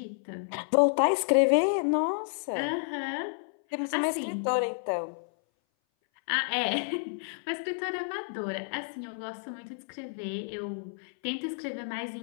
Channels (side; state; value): right; silent; 58 dB below the other